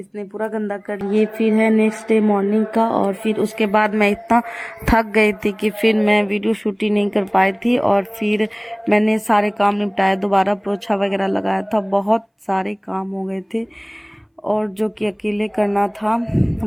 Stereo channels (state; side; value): identical; both; correlation 1.00